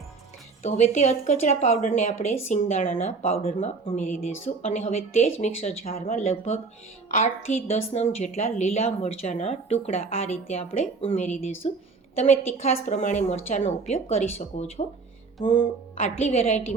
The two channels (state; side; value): quieter; left; 4.5 dB